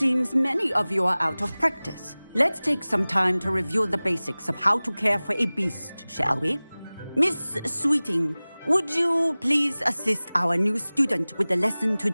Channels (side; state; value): both; inverted; correlation -0.99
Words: many of you are out of practice. Let's take some time to review the basics of how to care for a beast, shall we? Miss Sweeting, would you please assist our new student with the lesson